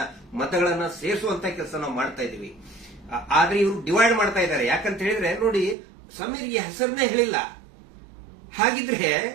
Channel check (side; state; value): left; drops out; at 5.8 s